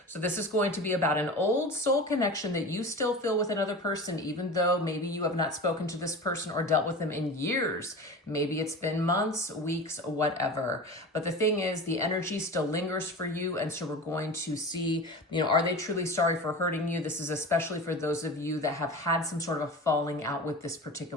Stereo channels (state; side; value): normal; both; correlation 0.32